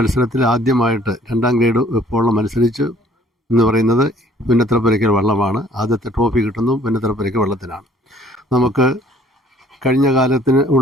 ആദ്യമായിട്ട് 2-ാം ഗ്രേഡ് വെപ്പോളം മത്സരിച്ചു എന്ന് പറയുന്നത് പുന്നത്തറ പുരയ്ക്കൽ വള്ളമാണ്. ആദ്യത്തെ ട്രോഫി കിട്ടുന്നതും പുന്നത്തറ പുരയ്ക്കൽ വള്ളത്തിനാണ്. നമുക്ക് കഴിഞ്ഞ കാലത്തിന്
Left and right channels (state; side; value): normal; both; correlation 0.58